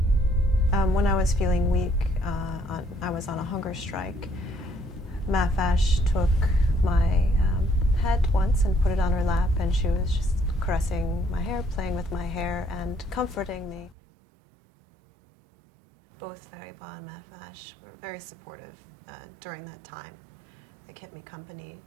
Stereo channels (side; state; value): left; drops out; at 14.0 s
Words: When I was feeling weak, I was on a hunger strike. Mahvash took my head once and put it on her lap, and she was just caressing my hair, playing with my hair, and comforting me. Both Fariba and Mahvash were very supportive during that time. They kept me company,